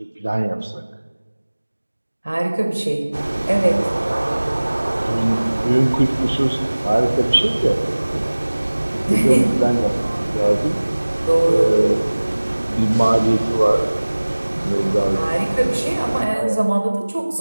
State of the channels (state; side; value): inverted; both; correlation -1.00